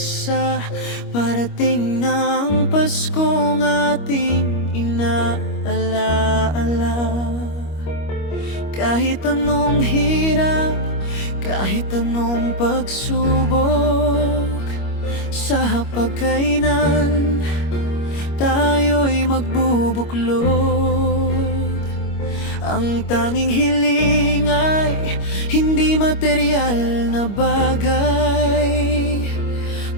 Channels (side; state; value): right; late; 25 ms